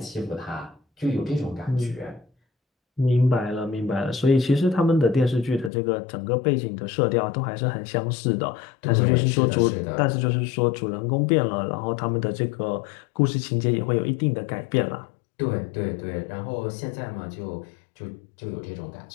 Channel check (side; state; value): right; drops out; at 5.7 s